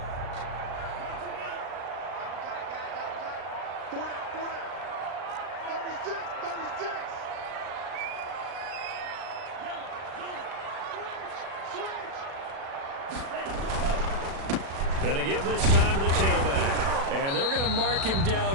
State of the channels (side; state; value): left; late; 36 ms